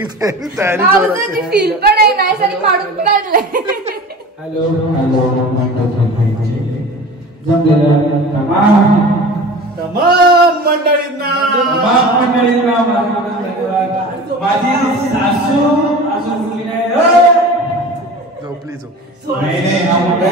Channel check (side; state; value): both; normal; correlation 0.37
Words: तयारी फील पण आहे नाही सगळी काढून काढलंय. हॅलो तमाम मंडळींना माझी सासू अजून मुली नाही. झोपली झोप.